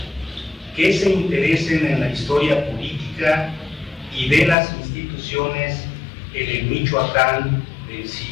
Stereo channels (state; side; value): drops out; right; at 4.5 s